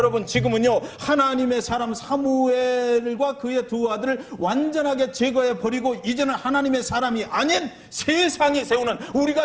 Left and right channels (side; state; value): both; identical; correlation 1.00